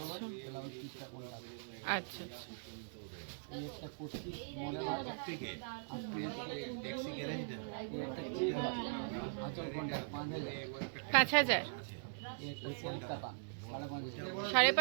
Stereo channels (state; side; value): silent; left; digital silence